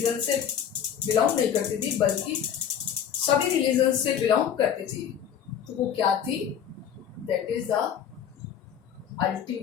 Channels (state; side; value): quieter; right; 8.7 dB